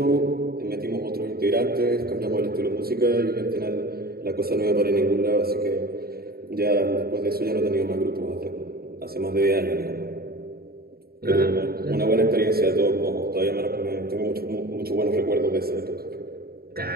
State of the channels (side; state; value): left; late; 0.45 ms